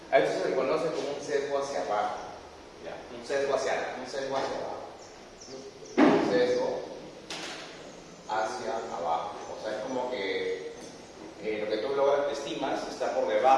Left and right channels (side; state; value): both; identical; correlation 1.00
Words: A esto se le conoce como un sesgo hacia abajo. ¿Ya? Un sesgo hacia abajo. Un sesgo hacia abajo. O sea, es como que lo que tú estimas está por